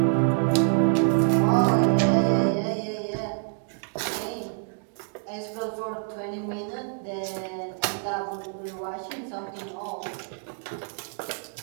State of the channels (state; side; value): silent; left; 60 dB below the other